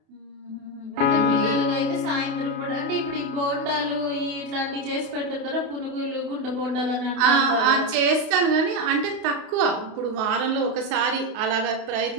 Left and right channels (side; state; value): left; late; 32 ms